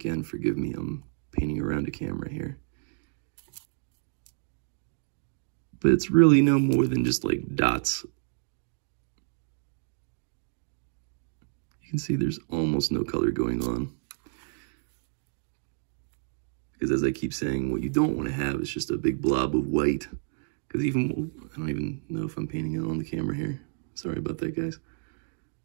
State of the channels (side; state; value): left; silent; digital silence